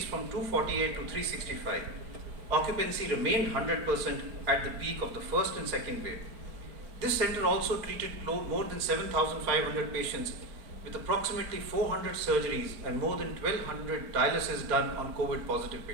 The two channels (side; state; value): left; late; 4.5 ms